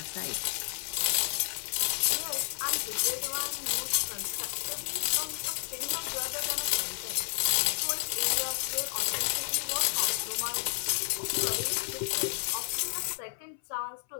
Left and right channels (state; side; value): silent; right; 57 dB below the other